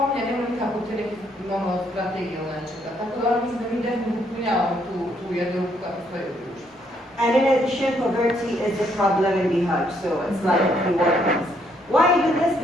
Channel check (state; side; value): normal; both; correlation 0.71